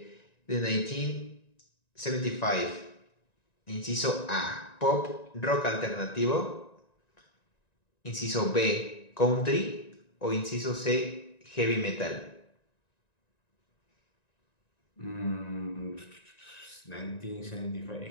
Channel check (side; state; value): right; late; 1.9 ms